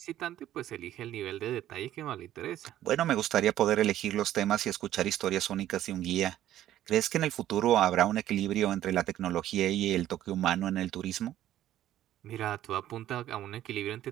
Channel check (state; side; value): quieter; left; 12.7 dB